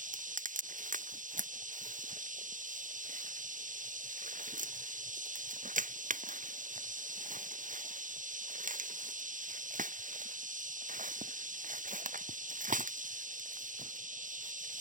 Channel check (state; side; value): late; left; 0.38 ms